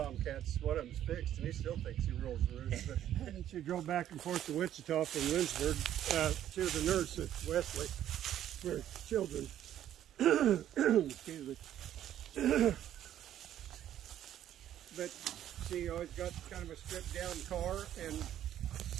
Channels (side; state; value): left; quieter; 11.4 dB